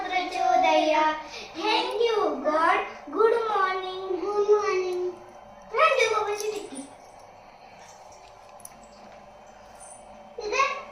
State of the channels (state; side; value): identical; both; correlation 1.00